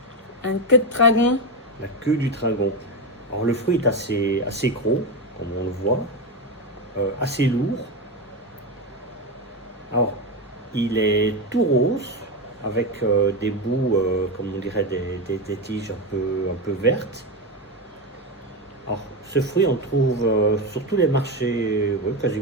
un queue de dragon. la queue du dragon. Alors le fruit est assez gros, comme on le voit, assez lourd. Alors il est tout rose, avec des bouts, comme on dirait, des tiges un peu vertes. Alors ce fruit on le trouve sur tous les marchés, oui,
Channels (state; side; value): normal; both; correlation 0.13